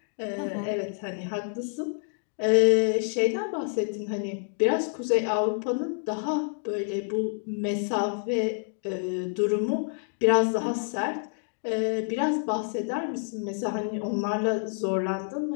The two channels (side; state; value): right; silent; 59 dB below the other